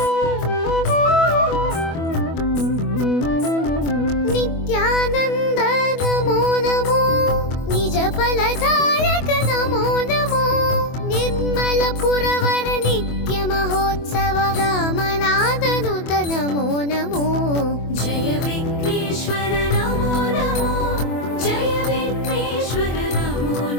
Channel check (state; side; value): late; right; 24 ms